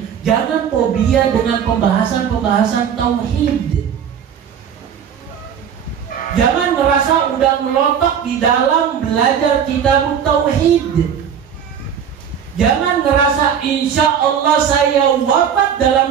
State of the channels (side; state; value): left; quieter; 8.0 dB